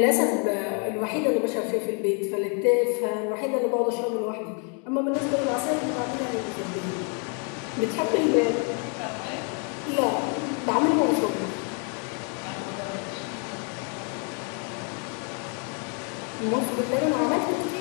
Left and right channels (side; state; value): right; quieter; 39.2 dB